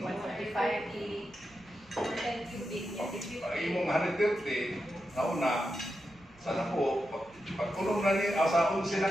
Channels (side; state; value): right; noise; rumble, 26 dB below the sound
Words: 145, 10 cubic. Pag imong 130, nauna, sana po, pag kulong na ni, sa 11